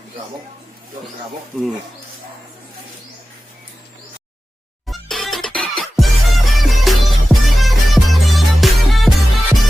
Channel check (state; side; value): normal; both; correlation 0.95